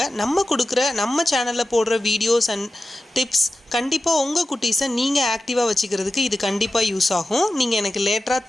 நம்ம சேனல்ல போடுற வீடியோஸ் அண்ட் டிப்ஸ் கண்டிப்பா உங்க குட்டீஸை நீங்க ஆக்டிவா வச்சுக்கிறதுக்கு இது கண்டிப்பா யூஸ் ஆகும். நீங்க எனக்கு லேட்டரா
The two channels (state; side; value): normal; both; correlation 0.93